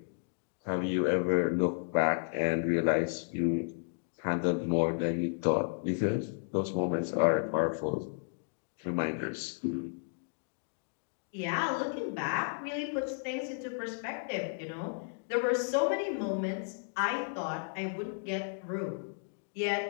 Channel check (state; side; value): silent; right; digital silence